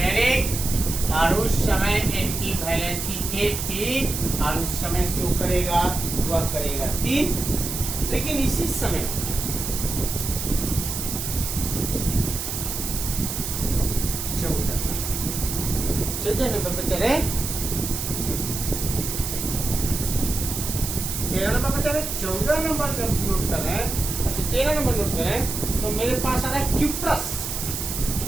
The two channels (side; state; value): right; noise; hiss, 4 dB below the sound